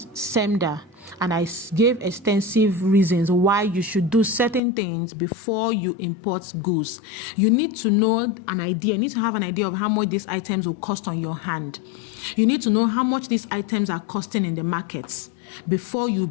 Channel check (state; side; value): drops out; right; at 4.6 s